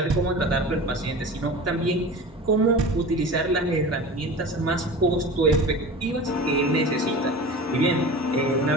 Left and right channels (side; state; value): both; normal; correlation 0.34